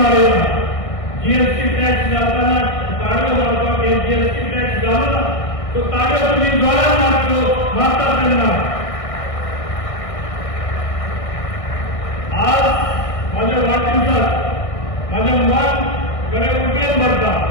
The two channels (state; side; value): late; right; 1.6 ms